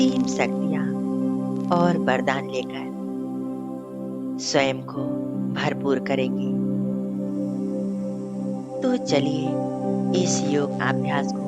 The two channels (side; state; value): both; identical; correlation 1.00